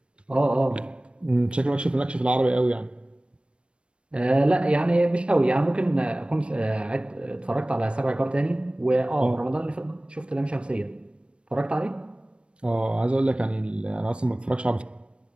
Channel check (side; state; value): left; late; 0.057 ms